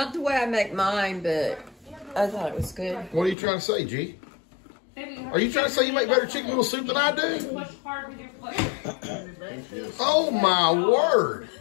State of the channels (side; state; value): right; drops out; at 3.4 s